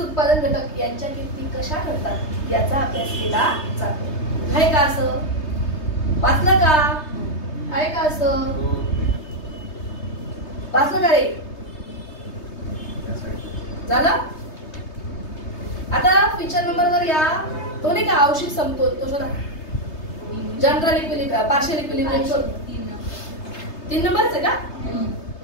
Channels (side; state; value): right; late; 3.3 ms